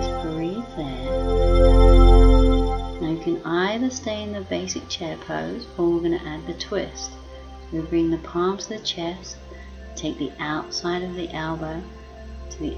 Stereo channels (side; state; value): both; identical; correlation 1.00